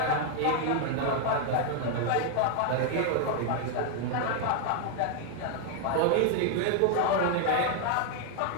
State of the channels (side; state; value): both; different; correlation 0.00